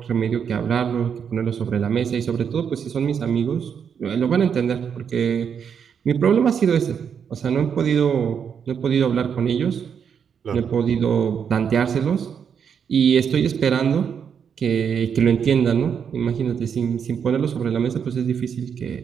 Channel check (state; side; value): quieter; left; 7.3 dB